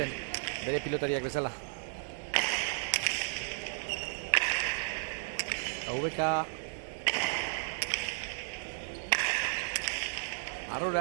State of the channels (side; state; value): left; silent; digital silence